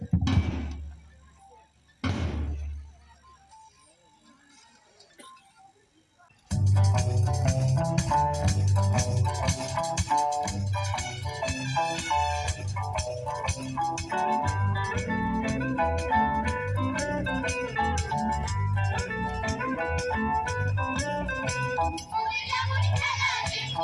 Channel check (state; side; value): identical; both; correlation 1.00